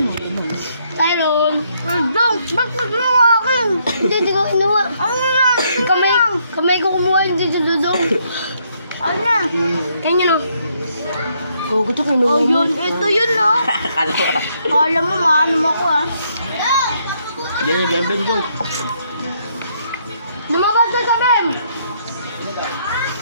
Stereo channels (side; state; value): both; inverted; correlation -0.72